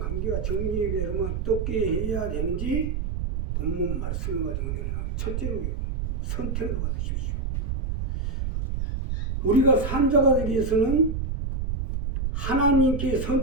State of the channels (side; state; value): right; noise; rumble, 2 dB below the sound